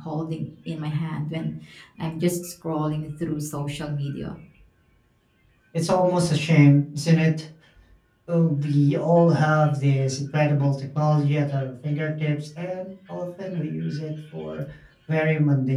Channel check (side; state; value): both; identical; correlation 1.00